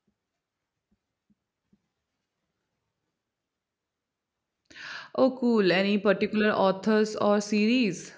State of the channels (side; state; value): both; identical; correlation 1.00